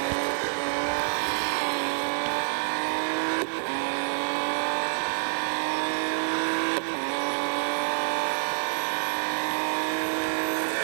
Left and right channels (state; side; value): silent; left; digital silence